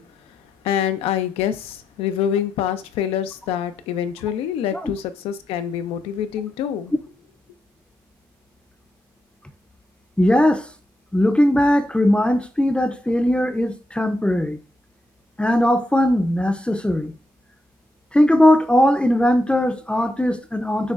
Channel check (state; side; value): normal; both; correlation 0.84